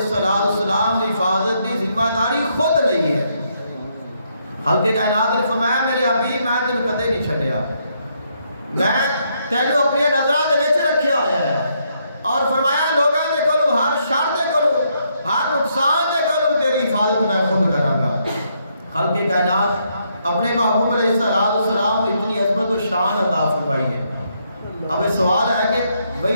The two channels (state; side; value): inverted; both; correlation -0.75